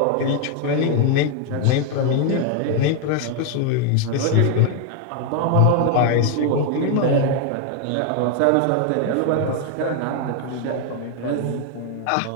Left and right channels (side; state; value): both; different; correlation 0.00